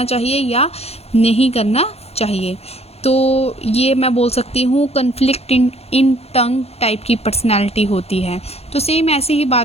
चाहिए या नहीं करना चाहिए। तो ये मैं बोल सकती हूँ कन्फ्लिक्ट इन टंग टाइप की पर्सनैलिटी होती है। तो सेम ऐसी ही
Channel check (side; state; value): right; late; 0.30 ms